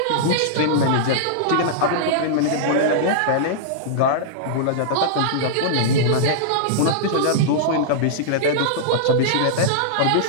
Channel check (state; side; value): different; both; correlation -0.02